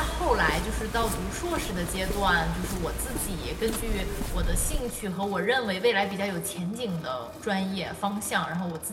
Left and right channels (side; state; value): both; identical; correlation 1.00